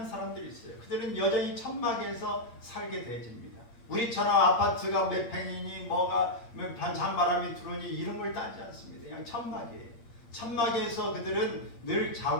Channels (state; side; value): late; right; 8.7 ms